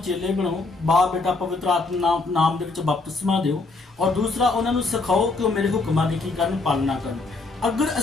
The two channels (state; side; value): quieter; right; 3.6 dB